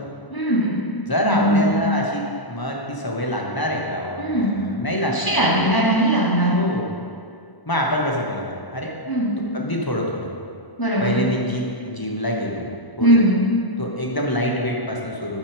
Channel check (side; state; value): right; late; 1.0 ms